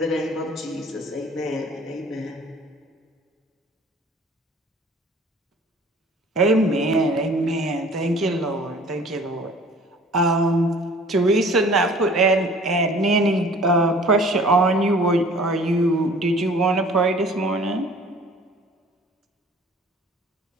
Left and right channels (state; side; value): normal; both; correlation 0.49